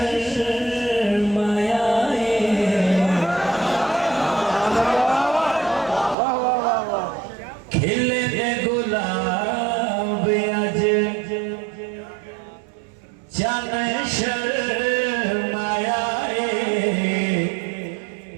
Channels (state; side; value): drops out; left; at 6.2 s